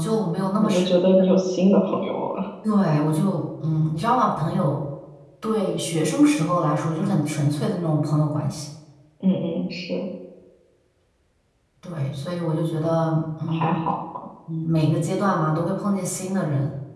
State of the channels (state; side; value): identical; both; correlation 1.00